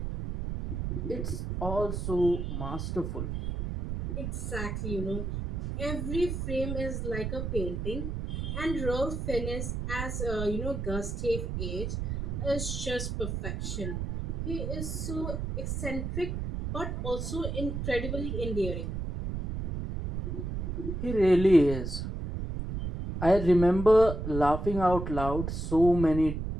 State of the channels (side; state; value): right; noise; rumble, 3 dB below the sound